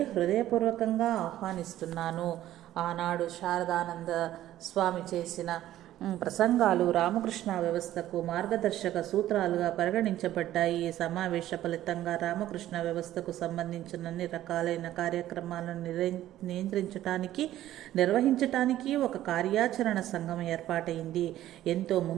హృదయపూర్వకంగా ఆహ్వానిస్తున్నాను. ఆనాడు శారదానంద స్వామి చేసిన ప్రసంగాలు రామకృష్ణ వ్యవస్థకు మార్గదర్శక సూత్రాలుగా పరిగణించబడ్డాయి. ఈ సమావేశ ఫలితంగా రామకృష్ణ వ్యవస్థకు సంబంధించిన అన్ని రకాలైన కార్యక్రమాలను నిర్వహించటానికి ఒక కార్యాచరణ సంఘం ఏర్పాటైంది. ఎంతో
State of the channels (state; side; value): quieter; left; 13.5 dB